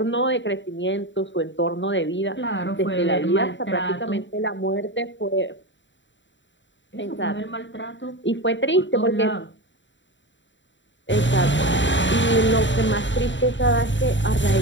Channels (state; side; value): late; right; 0.54 ms